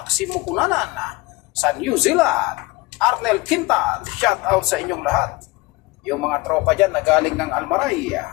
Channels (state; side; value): quieter; right; 22.2 dB